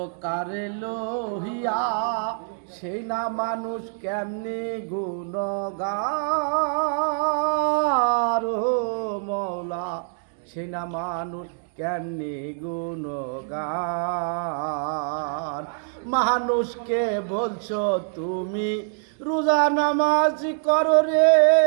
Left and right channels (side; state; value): left; silent; digital silence